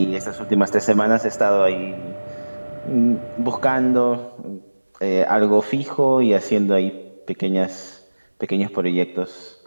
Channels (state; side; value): inverted; both; correlation -1.00